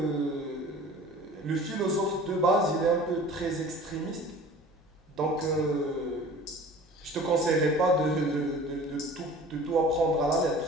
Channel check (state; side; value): normal; both; correlation 0.44